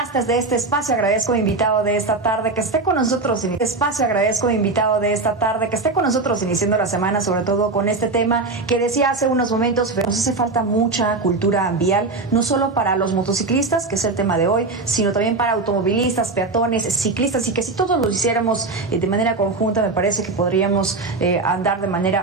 de este espacio. Agradezco a mi invitado de esta tarde que esté con nosotros en este espacio. Agradezco a mi invitado de esta tarde que esté con nosotros iniciando la semana, sobre todo con este tema que decía hace unos momentos. Nos hace falta mucha cultura vial, no solo para los motociclistas, que es el tema de hoy, sino también para automovilistas, peatones, ciclistas, y que si todos lo hiciéramos de manera conjunta, me parece que podríamos andar de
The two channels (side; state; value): left; quieter; 3.6 dB